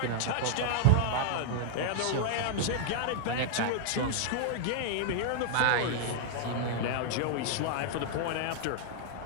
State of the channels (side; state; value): both; different; correlation 0.00